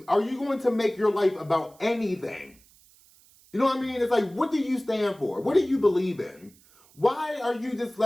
make your life about anything? You know what I mean? It's like, what do you stand for? What do you believe in? Why are you just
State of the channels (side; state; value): right; noise; hiss, 28 dB below the sound